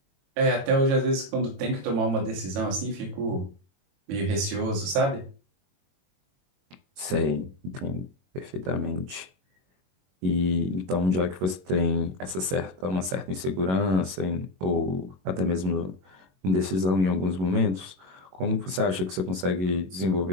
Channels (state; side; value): late; left; 22 ms